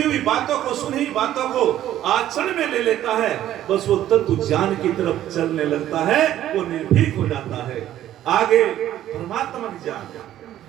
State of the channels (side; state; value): left; quieter; 12.5 dB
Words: हुई बातों को, सुनी हुई बातों को आचरण में ले लेता है, बस वो तत्व ज्ञान की तरफ चलने लगता है, वो निर्भीक हो जाता है। आगे भ्रमात्मक ज्ञान,